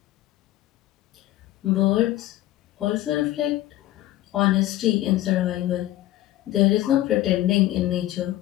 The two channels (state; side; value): quieter; right; 15.1 dB